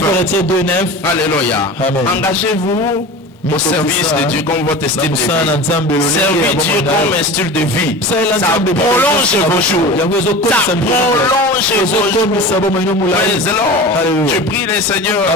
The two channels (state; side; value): normal; both; correlation 0.33